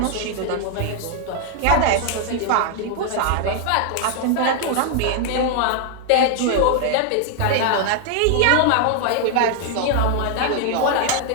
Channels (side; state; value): both; different; correlation 0.00